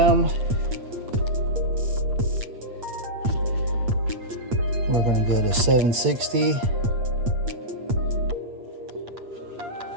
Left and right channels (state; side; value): late; left; 8.7 ms